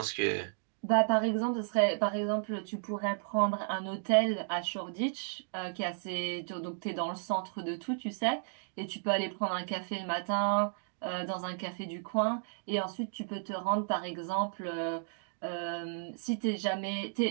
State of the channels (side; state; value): left; silent; digital silence